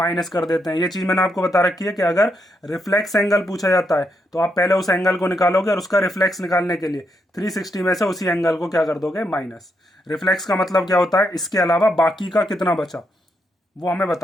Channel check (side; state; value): both; normal; correlation 0.80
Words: कर देते हैं। ये चीज मैंने आपको बता रखी है कि अगर रिफ्लेक्स एंगल पूछा जाता है तो आप पहले उस एंगल को निकालोगे और उसका रिफ्लेक्स निकालने के लिए 360 में से उसी एंगल को क्या कर दोगे, माइनस। रिफ्लेक्स का मतलब क्या होता है, इसके अलावा बाकी का कितना बचा वो हमें